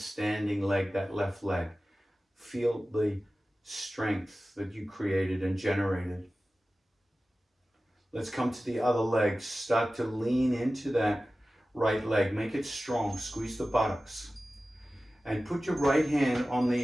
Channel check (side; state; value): both; normal; correlation 0.96